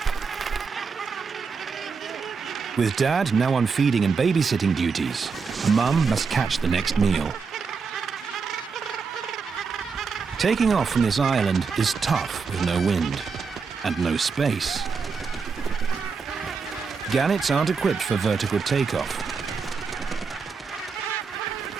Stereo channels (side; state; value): left; quieter; 5.3 dB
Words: With Dad now on feeding and babysitting duties, Mum must catch the next meal. Taking off from this island is tough with no wind and no space. Gannets aren't equipped for vertical takeoff.